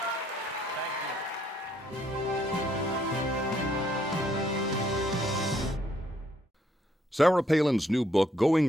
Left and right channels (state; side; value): normal; both; correlation 0.69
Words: Sarah Palin's new book,